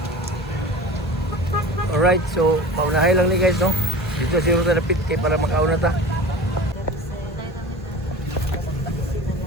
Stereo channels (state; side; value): normal; both; correlation 0.36